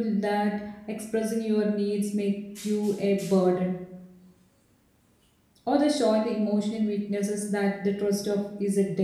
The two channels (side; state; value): both; identical; correlation 1.00